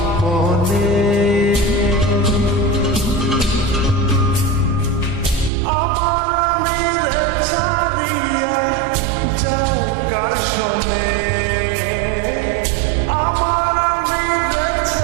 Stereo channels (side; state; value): left; drops out; at 5.5 s